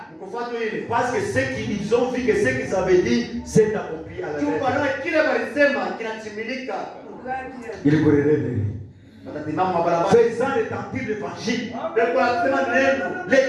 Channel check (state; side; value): identical; both; correlation 1.00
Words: Parce que ce qu'ils ont vu, que ce qu'ils avaient dit, s'est accompli à la lettre. Kile walisema kinatimilika. Ils courraient les rues. Watasimama mabarabara. Faisant retentir l'évangile. Wanasema neno.